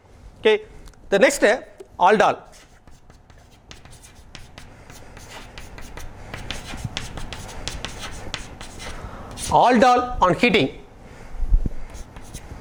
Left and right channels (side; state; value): both; identical; correlation 1.00